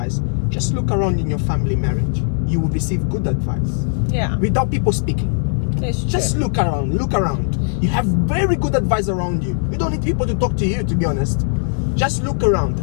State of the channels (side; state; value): right; silent; digital silence